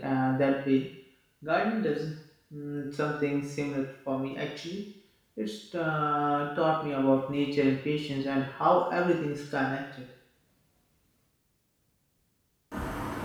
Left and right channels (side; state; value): both; identical; correlation 1.00